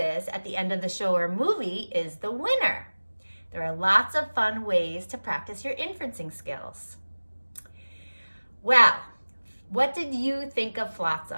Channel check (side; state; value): both; inverted; correlation -1.00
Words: at the end of the show or movie is the winner. There are lots of fun ways to practice your inferencing skills. Well, what did you think of